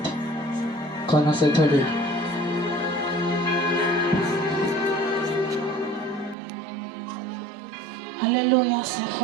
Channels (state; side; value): drops out; left; at 6.4 s